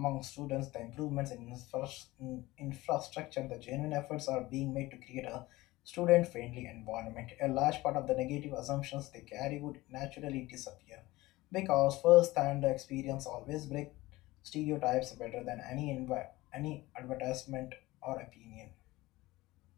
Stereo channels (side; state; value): right; quieter; 19.2 dB